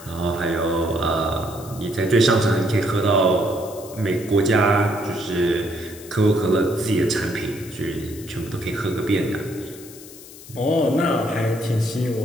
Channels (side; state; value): left; noise; hiss, 18 dB below the sound